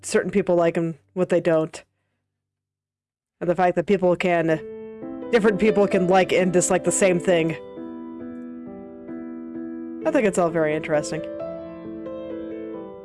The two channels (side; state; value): both; identical; correlation 1.00